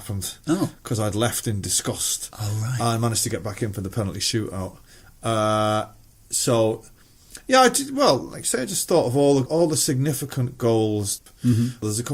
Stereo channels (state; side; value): identical; both; correlation 1.00